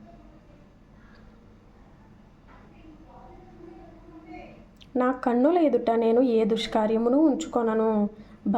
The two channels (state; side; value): identical; both; correlation 1.00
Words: నా కన్నుల ఎదుట నేను ఏ దుష్కార్యమును ఉంచుకొనను.